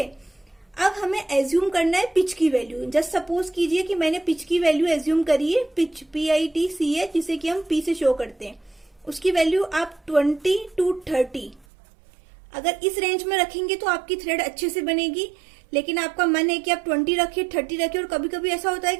अब हमें एज्यूम करना है पिच की वैल्यू। जस्ट सपोज कीजिए कि मैंने पिच की वैल्यू एज्यूम करी है, पिच PITCH, जिसे कि हम P से शो करते हैं। उसकी वैल्यू आप 20 to 30 अगर इस रेंज में रखेंगे तो आपकी थ्रेड अच्छे से बनेगी। लेकिन आपका मन है कि आप 20 रखिए, 30 रखिए, और कभी कभी ऐसा होता है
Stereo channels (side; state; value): left; drops out; at 11.7 s